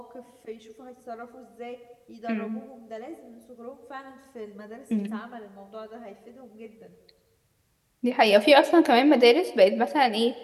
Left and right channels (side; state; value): both; identical; correlation 1.00